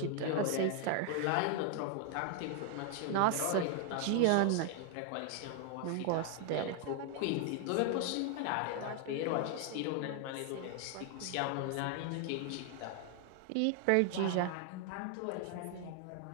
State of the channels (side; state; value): both; different; correlation 0.00